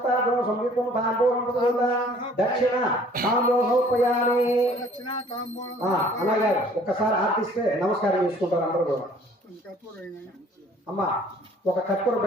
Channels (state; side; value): normal; both; correlation 0.55